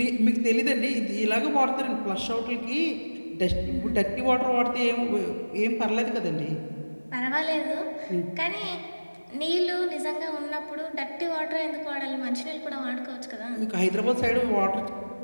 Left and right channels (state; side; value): inverted; both; correlation -1.00